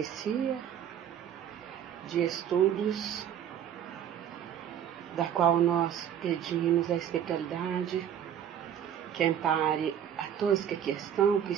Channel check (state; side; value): quieter; left; 9.4 dB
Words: de estudos, da qual nós pedimos a espiritualidade que ampare a todos que aqui estão,